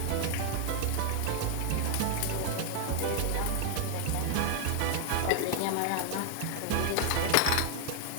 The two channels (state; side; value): different; both; correlation 0.00